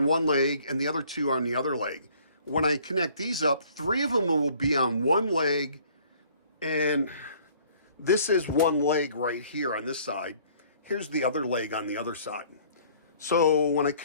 one leg and the other 2 are on the other leg. When I connect these up, 3 of them will be on one leg, and this is one leg right here on this side. Here's the other leg on the other side. So when I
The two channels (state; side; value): inverted; both; correlation -0.57